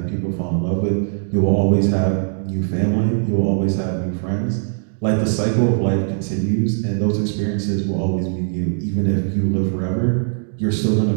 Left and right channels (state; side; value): silent; left; 66 dB below the other